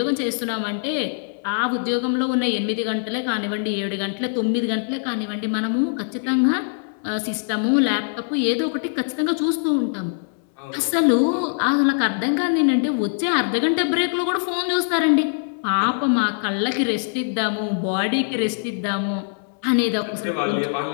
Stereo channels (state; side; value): silent; right; 60 dB below the other